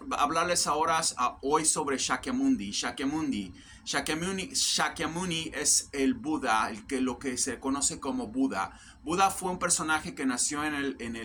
hablarles ahora hoy sobre Shakyamuni. Shakyamuni es el Buda, lo que se conoce como Buda. Buda fue un personaje que nació en el,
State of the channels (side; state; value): both; identical; correlation 1.00